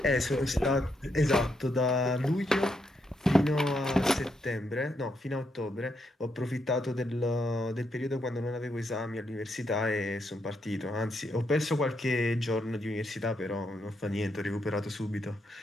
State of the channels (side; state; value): both; normal; correlation 0.79